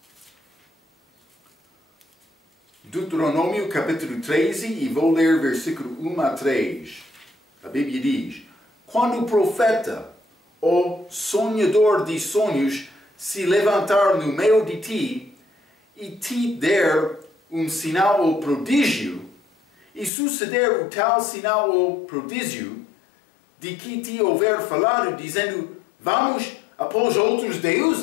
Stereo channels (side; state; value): right; drops out; at 20.1 s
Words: Deuteronômio capítulo 13 e vou ler versículo 1 a 3. A Bíblia diz: quando o profeta, ou sonhador de sonhos, se levantar no meio de ti e te der um sinal ou prodígio, e suceder o tal sinal ou prodígio, de que te houver falado, dizendo: vamos após outros